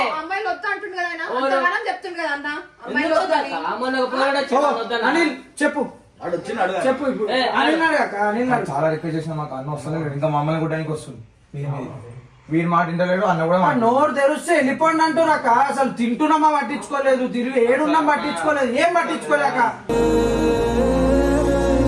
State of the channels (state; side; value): identical; both; correlation 1.00